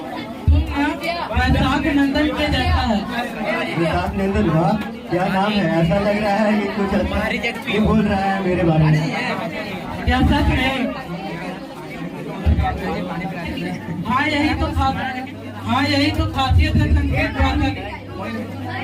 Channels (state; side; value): identical; both; correlation 1.00